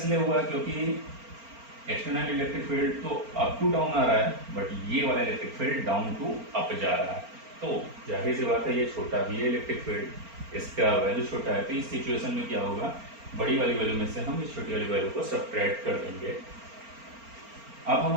हुआ क्योंकि एक्सटर्नल इलेक्ट्रिक फील्ड तो अप टू डाउन आ रहा है, बट ये वाला electric field down to up जा रहा है। तो जाहिर सी बात है ये छोटा भी है इलेक्ट्रिक फील्ड, इसका वैल्यू छोटा है। तो इस सिचुएशन में क्या होगा, बड़ी वाली वैल्यू में से हम इस छोटी वाली वैल्यू को सब्ट्रैक्ट कर देंगे। अब हम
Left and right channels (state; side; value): late; left; 4.4 ms